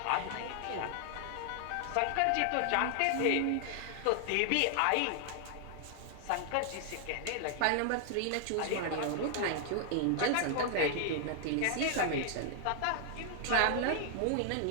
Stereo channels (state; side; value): different; both; correlation 0.00